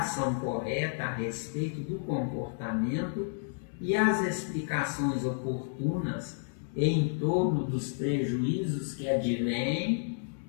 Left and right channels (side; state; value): right; silent; digital silence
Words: correta a respeito do comportamento e as explicações oportunas em torno dos prejuízos que advêm